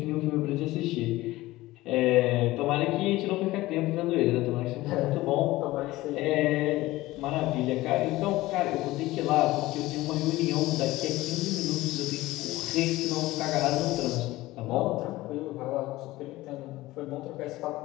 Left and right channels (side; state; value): right; quieter; 18.1 dB